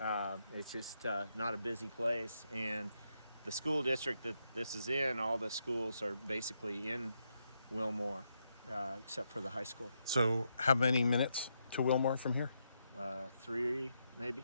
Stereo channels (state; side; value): inverted; both; correlation -0.81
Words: just not a busy place. And the school district that this is in, all the schools are basically in Wilmore, except for the high school. So how many minutes to Wilmore from here? 3,